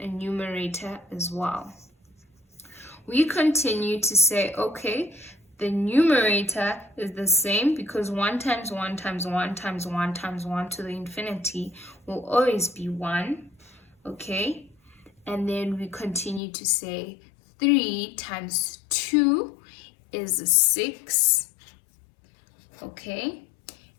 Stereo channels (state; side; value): drops out; right; at 16.4 s